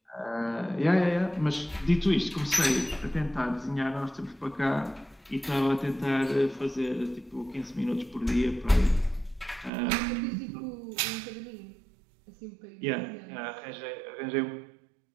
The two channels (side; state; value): left; drops out; at 9.7 s